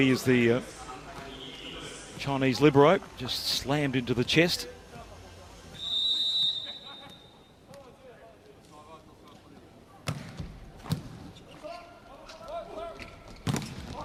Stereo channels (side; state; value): both; identical; correlation 1.00